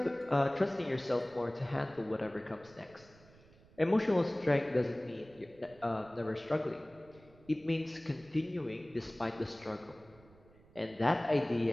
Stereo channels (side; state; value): right; noise; rumble, 25 dB below the sound